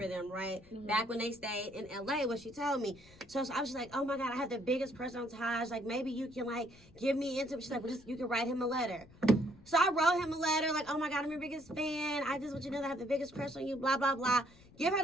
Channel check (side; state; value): left; noise; rumble, 24 dB below the sound